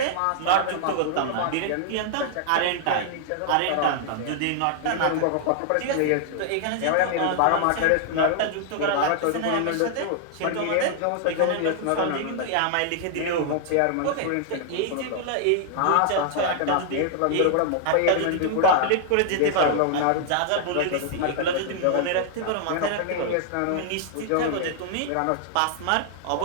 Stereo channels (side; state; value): both; different; correlation 0.00